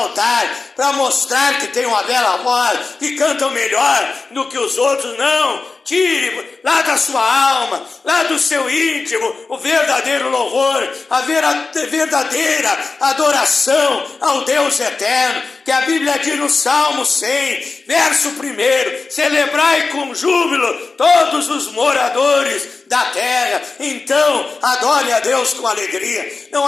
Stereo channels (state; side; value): quieter; right; 4.1 dB